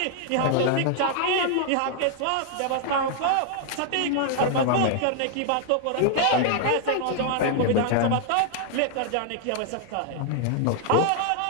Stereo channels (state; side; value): different; both; correlation 0.00